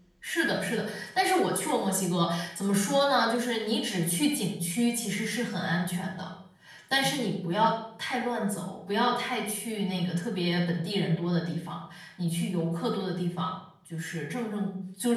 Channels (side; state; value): both; identical; correlation 1.00